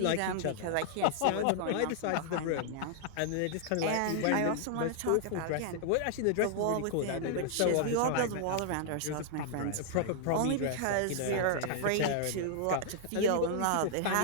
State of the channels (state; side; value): different; both; correlation -0.01